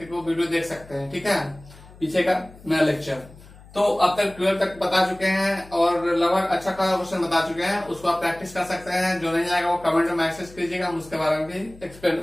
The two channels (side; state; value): left; noise; hum, 21 dB below the sound